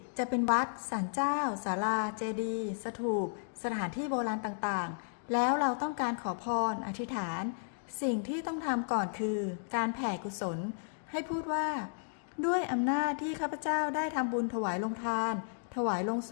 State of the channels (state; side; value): silent; right; digital silence